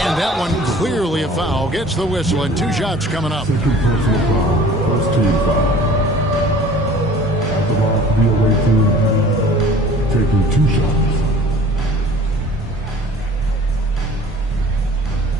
that one clearly a foul. Gets the whistle and 2 shots coming up. Second personal foul. First team foul. The ball for the away team taking 2 shots.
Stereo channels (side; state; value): both; normal; correlation 0.47